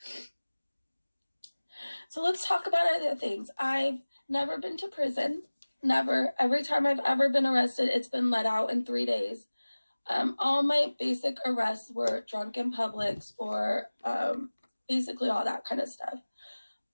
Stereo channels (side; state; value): both; inverted; correlation -1.00